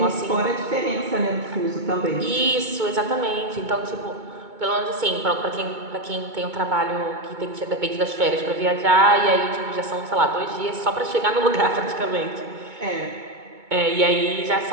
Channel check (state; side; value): late; left; 2.2 ms